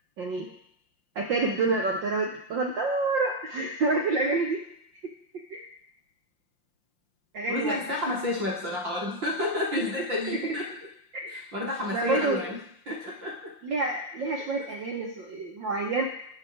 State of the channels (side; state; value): left; late; 5.7 ms